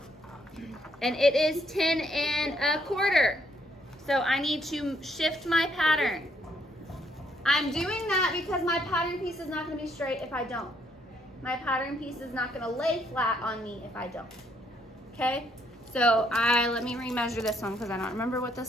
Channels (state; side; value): normal; both; correlation 0.71